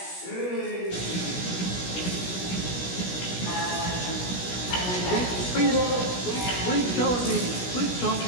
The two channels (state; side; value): late; right; 17 ms